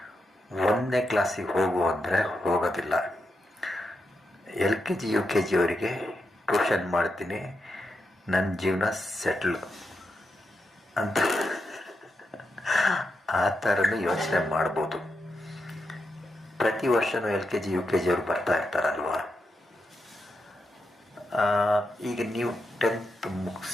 1ನೇ ಕ್ಲಾಸಿಗೆ ಹೋಗು ಅಂದರೆ ಹೋಗೋದಿಲ್ಲ. LKG UKG ಅವರಿಗೆ ಟ್ಯೂಷನ್ ಮಾಡ್ತೀನಿ, ನನ್ನ ಜೀವನ ಸೆಟ್ಲ್ ಅಂತ ಆ ಥರನೂ ಯೋಚನೆ ಮಾಡ್ಬೋದು. ಪ್ರತಿ ವರ್ಷವೂ LKG UKG ಅವರು ಬರ್ತಾ ಇರ್ತಾರಲ್ವ. ಈಗ ನೀವು 10th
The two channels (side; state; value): both; normal; correlation 0.85